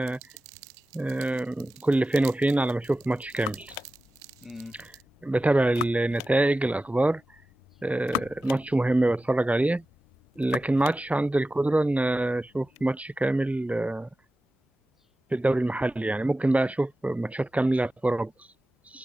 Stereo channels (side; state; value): both; normal; correlation 0.94